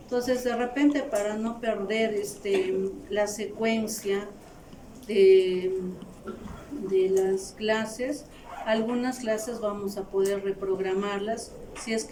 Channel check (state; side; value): identical; both; correlation 1.00